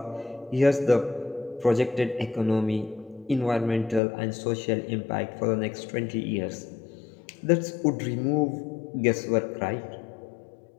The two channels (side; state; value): right; drops out; at 4.0 s